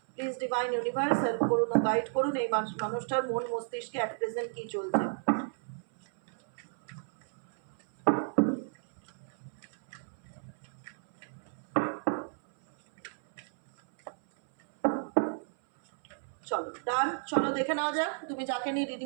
প্লিজ ডিভাইন ইউনিভার্স হেল্প করুন ও গাইড করুন এই মানুষটার মন মস্তিষ্কে অ্যাট প্রেজেন্ট কি চলছে। চলো ডান, চলো দেখে নেওয়া যাক তুমি যাকে নিয়ে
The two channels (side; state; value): left; silent; 56 dB below the other